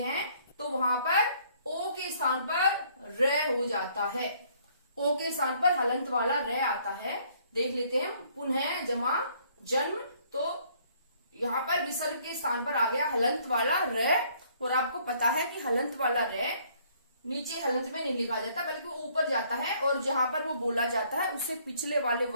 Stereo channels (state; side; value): inverted; both; correlation -0.63